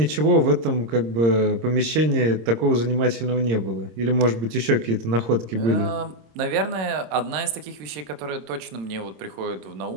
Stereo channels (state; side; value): late; left; 26 ms